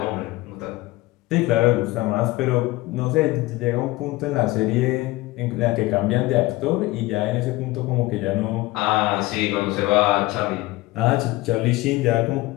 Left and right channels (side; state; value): right; quieter; 19.5 dB